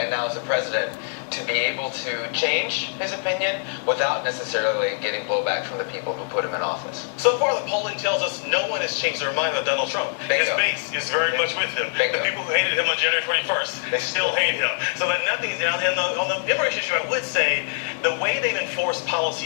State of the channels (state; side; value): silent; right; 63 dB below the other